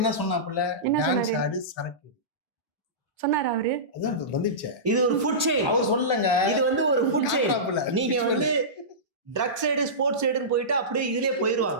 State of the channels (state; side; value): normal; both; correlation -0.19